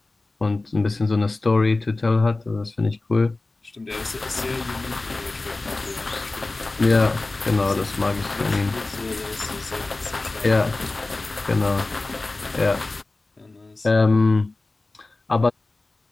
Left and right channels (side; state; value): right; quieter; 3.2 dB